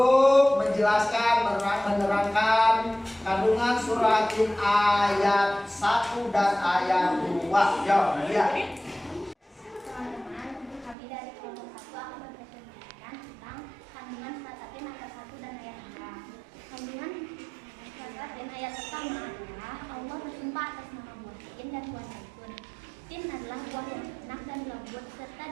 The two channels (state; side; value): drops out; left; at 11.0 s